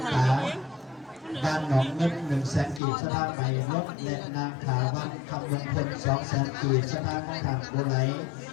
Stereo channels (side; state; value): right; drops out; at 2.8 s